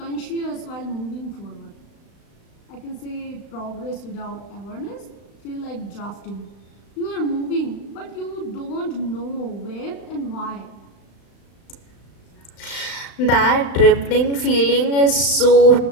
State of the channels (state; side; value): late; right; 35 ms